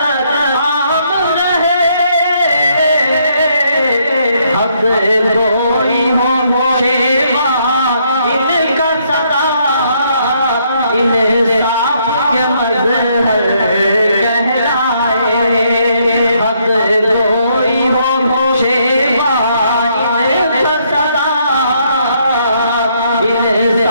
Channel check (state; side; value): inverted; both; correlation -0.71